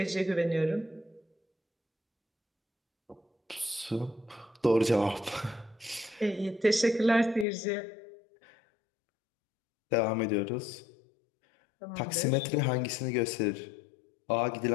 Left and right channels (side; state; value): right; drops out; at 7.5 s